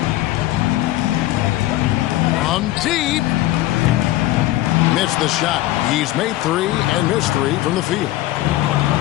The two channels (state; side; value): quieter; right; 16.1 dB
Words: From deep. Missed the shot. He's made 3 and missed 3 from the field.